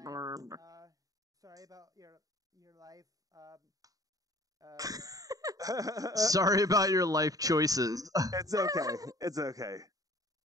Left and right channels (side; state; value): left; late; 0.17 ms